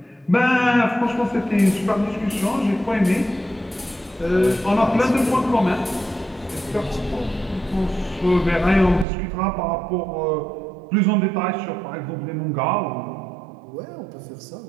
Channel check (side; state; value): left; drops out; at 9.1 s